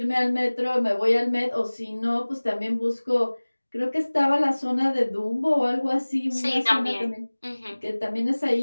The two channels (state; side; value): inverted; both; correlation -1.00